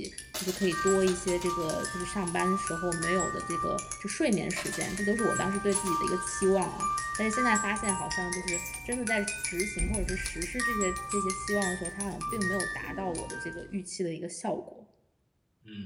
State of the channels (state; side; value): identical; both; correlation 1.00